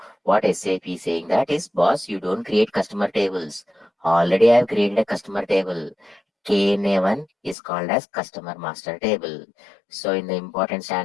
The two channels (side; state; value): right; drops out; at 7.6 s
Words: what SAP is saying that is, boss, you don't create customer tables. Already I have created a customer table. KNA1 is called as customer master table. So in the important